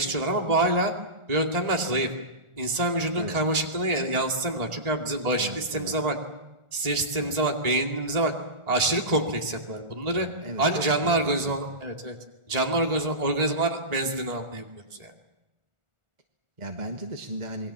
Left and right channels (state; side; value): late; left; 1.4 ms